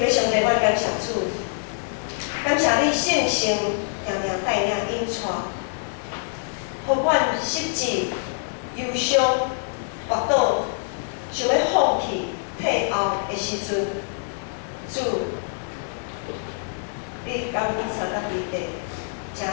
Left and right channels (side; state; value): right; silent; digital silence